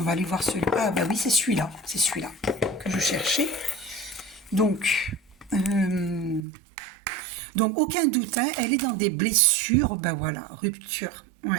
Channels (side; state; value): left; drops out; at 6.4 s